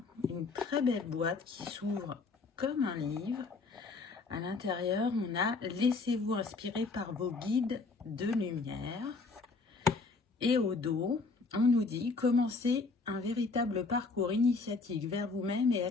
Une très belle boîte qui s'ouvre comme un livre. À l'intérieur, on a « Laissez-vous inspirer par vos guides de lumière ». Et au dos, on nous dit « Commencez un véritable parcours initiatique vers vous-même et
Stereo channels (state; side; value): quieter; right; 4.0 dB